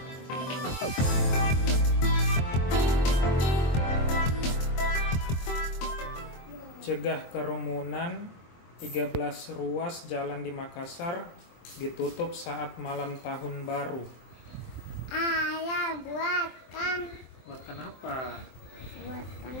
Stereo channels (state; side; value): late; right; 23 ms